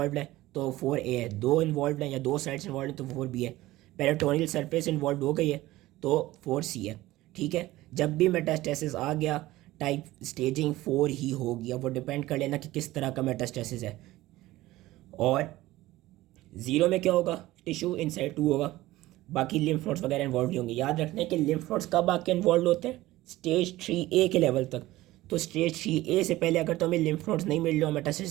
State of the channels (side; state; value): left; quieter; 17.2 dB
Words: है तो 4A है, दो इन्वॉल्व है या दो साइड्स इन्वॉल्व है तो 4B है, पेरिटोनियल सरफेस इन्वॉल्व हो गई है तो 4C है। ठीक है, जब भी मेटास्टेसिस आ गया टाइप स्टेजिंग 4 ही होगी। अब वो डिपेंड कर लेना कि किस तरह का मेटास्टेसिस है। और 0 में क्या होगा, टिश्यू इनसाइड 2 होगा, बाकी लिम्फ नोड्स वगैरह इन्वॉल्व नहीं होंगे। याद रखना है कि लिम्फ नोड्स कब आके इन्वॉल्व होते हैं, स्टेज 3A के लेवल तक। तो स्टेज 3A से पहले अगर तो हमें लिम्फ नोड्स नहीं मिल रहे हो,